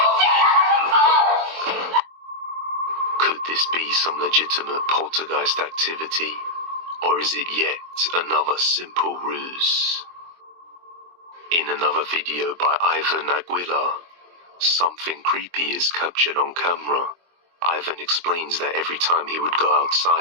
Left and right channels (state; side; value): late; left; 23 ms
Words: Could this be some legitimate poltergeist activity, or is it yet another simple ruse? In another video by Ivan Aguilar, something creepy is captured on camera. Ivan explains that every time he would go